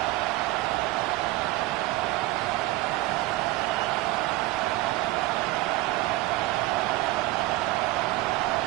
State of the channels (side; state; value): left; quieter; 18.7 dB